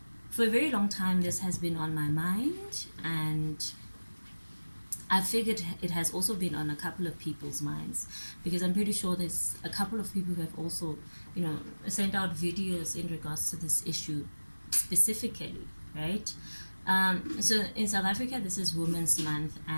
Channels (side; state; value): both; inverted; correlation -1.00